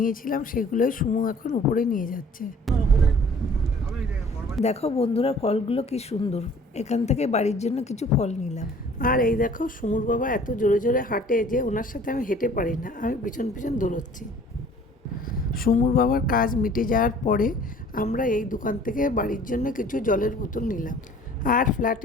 সেগুলোই সুমু এখন উপরে নিয়ে যাচ্ছে। দেখো বন্ধুরা, ফলগুলো কি সুন্দর। এখান থেকে বাড়ির জন্য কিছু ফল নিলাম। আর এই দেখো, সুমুর বাবা এত জোরে জোরে হাঁটে যে ওনার সাথে আমি হেঁটে পারি না, আমি পিছন পিছন দৌড়চ্ছি। সুমুর বাবার কাজ মিটে যাওয়ার পরে আমরা এই দোকান থেকে বাড়ির জন্য কিছু জলের বোতল নিলাম। আর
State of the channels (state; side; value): normal; both; correlation 0.51